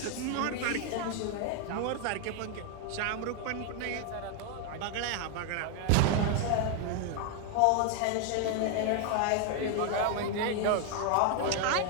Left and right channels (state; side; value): different; both; correlation 0.00